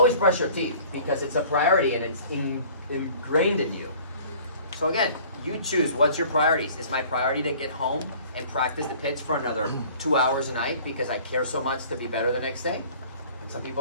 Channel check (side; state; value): both; inverted; correlation -0.49